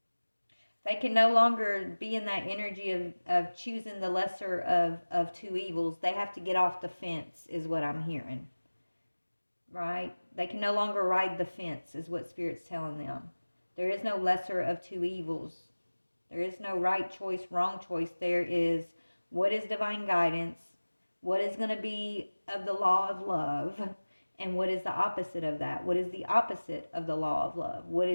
They can no longer be in that energy of choosing the lesser of two evils. They have to get off the fence, is what I'm hearing. Right? They can no longer ride the fence, is what Spirit's telling them. There is no lesser of two evils. There is no right choice, wrong choice. There is what is divine guidance, what is going to be of the law of love, and what is the opposite of that? What is the opposite of the law of love? What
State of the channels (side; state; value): both; inverted; correlation -1.00